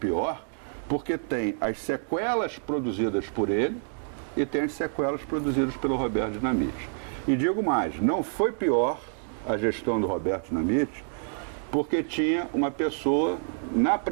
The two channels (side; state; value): left; silent; digital silence